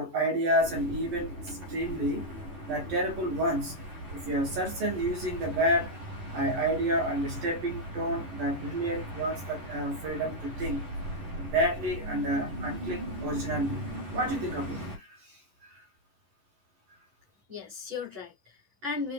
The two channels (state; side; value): late; left; 11 ms